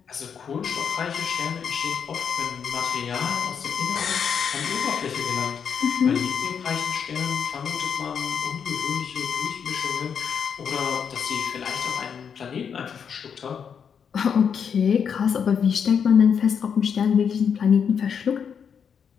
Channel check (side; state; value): right; quieter; 7.1 dB